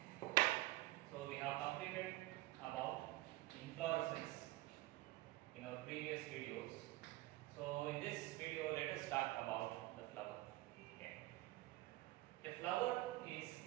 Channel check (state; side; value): quieter; left; 18.2 dB